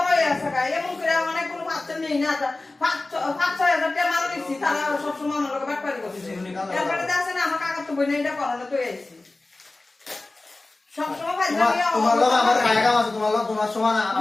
আছে গায় এমন করে অনেক কোনো পাচ্ছে নেই না 5-6 টাকা মাল দিছি তারা সব সময় আমার লোকে ব্যাপারই করছে এরপরে আছে না আমার কাকা তো বই না এটা করানো তো আইছি সব সময় ভাই তোমার লোক আমার কায়দা আছে তোমার লোক তোমার সমান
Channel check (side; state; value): right; quieter; 3.1 dB